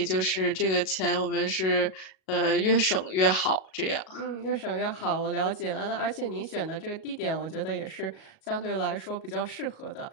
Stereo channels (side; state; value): right; late; 37 ms